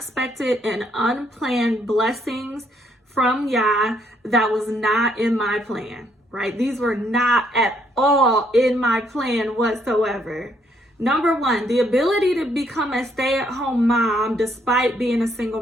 and unplanned blessings from Yah that was not in my plan, right? These were not at all in my plan whatsoever. Number one, the ability to become a stay-at-home mom despite being a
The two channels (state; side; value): normal; both; correlation 0.70